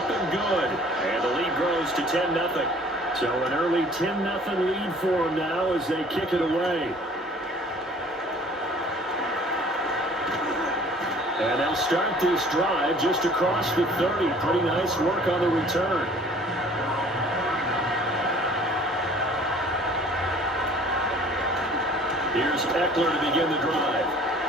and good. And the lead grows to 10-0. So an early 10-0 lead for them now as they kick it away. And they'll start this drive just across the 30. Pretty nice work on the return. Here's Eckler to begin the drive.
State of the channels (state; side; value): normal; both; correlation 0.52